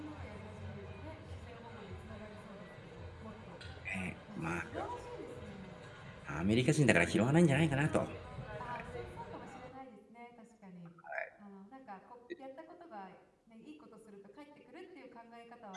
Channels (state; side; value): identical; both; correlation 1.00